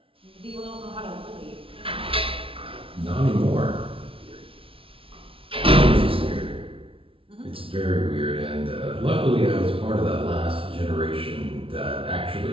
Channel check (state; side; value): late; left; 0.26 ms